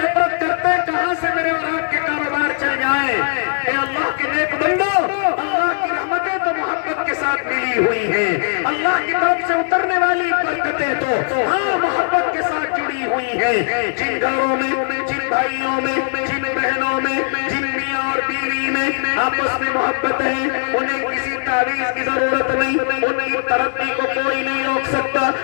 کرتے کہاں سے میرے اور آپ کے کاروبار چل جائیں۔ اے اللہ کے نیک بندو، اللہ کی رحمتیں تو محبت کے ساتھ ملی ہوئی ہیں، اللہ کی طرف سے اترنے والی برکتیں تو ہاں محبت کے ساتھ جڑی ہوئی ہیں۔ جن گھروں میں، جن بھائیوں میں، جن بہنوں میں، جن میاں اور بیوی میں آپس میں محبت ہے، انہیں کسی تعویذ کی ضرورت نہیں، ان کی ترقی کو کوئی نہیں روک سکتا،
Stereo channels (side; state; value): right; silent; digital silence